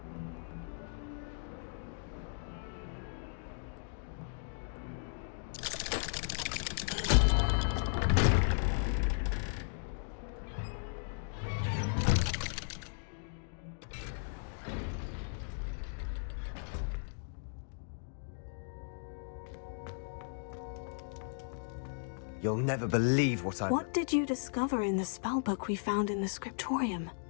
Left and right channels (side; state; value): right; silent; digital silence